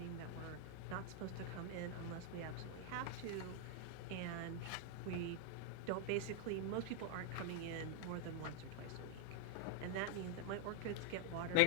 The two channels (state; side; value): different; both; correlation 0.00